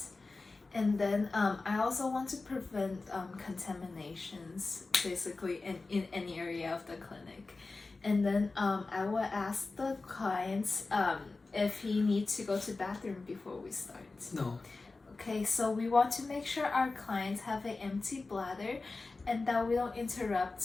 And then I also want to prevent contaminations basically in any area of the clinic. And then I will ask the clients if he needs to go to the bathroom before we start. no. Okay, so we want to make sure our clients have an empty bladder and that we don't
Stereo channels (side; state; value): right; quieter; 3.6 dB